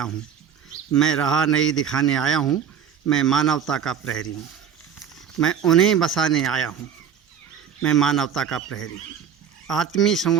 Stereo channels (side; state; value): left; quieter; 8.2 dB